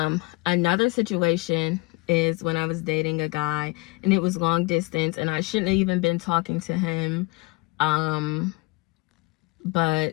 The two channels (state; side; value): quieter; right; 24.4 dB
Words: Another situation is when I was dating a guy and it was long distance, and I shouldn't have even been talking to him,